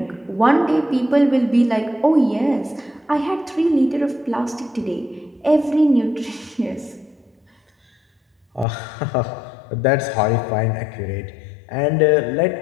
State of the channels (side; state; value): right; drops out; at 8.7 s